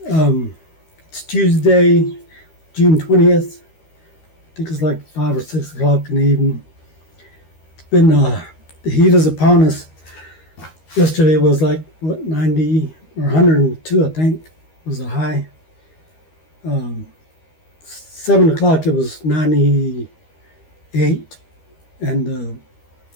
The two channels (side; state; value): right; late; 13 ms